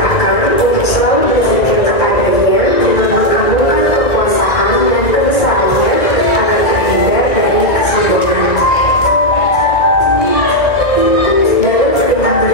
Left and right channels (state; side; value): late; right; 1.9 ms